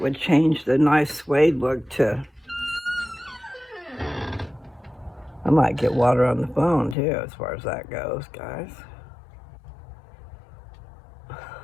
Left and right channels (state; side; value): drops out; right; at 7.0 s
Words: would change the nice suede look to... I might get water on the phone too, as far as that goes, guys.